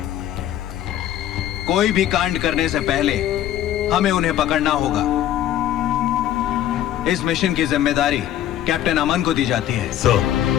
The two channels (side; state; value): right; quieter; 11.8 dB